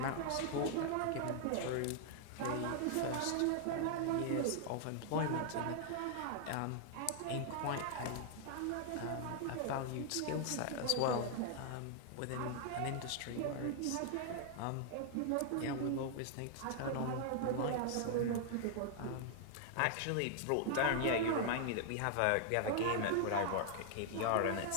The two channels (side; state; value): both; different; correlation 0.00